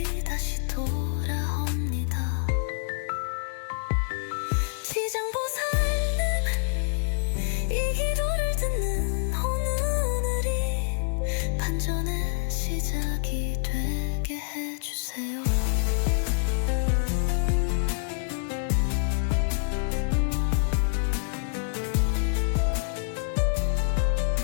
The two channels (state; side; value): silent; right; digital silence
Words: 다시 돌아옵니다. 지장보살님, 이 기도를 듣는 오늘이 반전의 시작이 되게 해주세요.